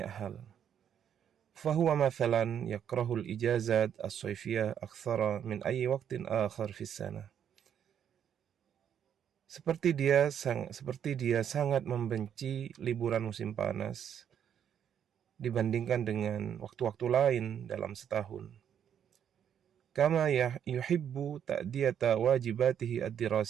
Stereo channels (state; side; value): quieter; left; 8.9 dB